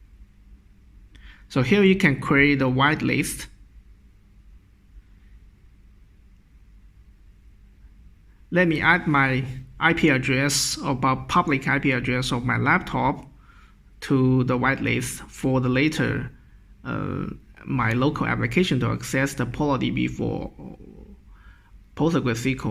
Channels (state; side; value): identical; both; correlation 1.00